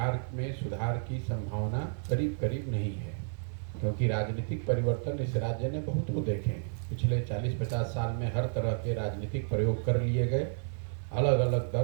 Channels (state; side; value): silent; left; 57 dB below the other